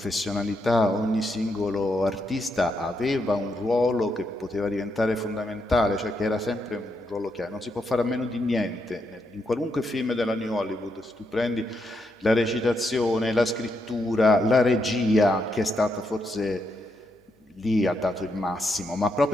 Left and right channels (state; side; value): normal; both; correlation 0.80